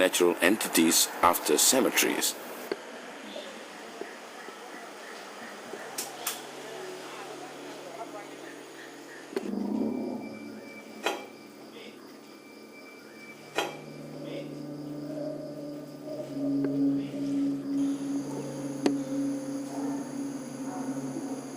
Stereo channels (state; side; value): identical; both; correlation 1.00